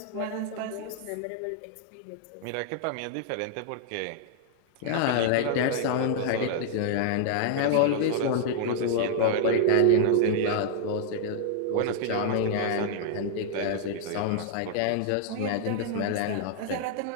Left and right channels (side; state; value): both; different; correlation -0.01